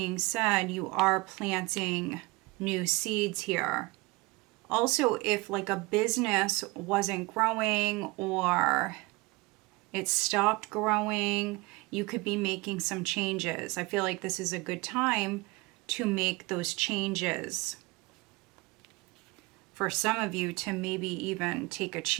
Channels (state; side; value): quieter; left; 24.6 dB